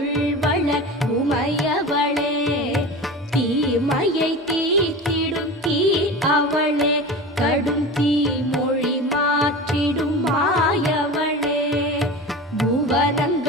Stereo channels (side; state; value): both; normal; correlation 0.31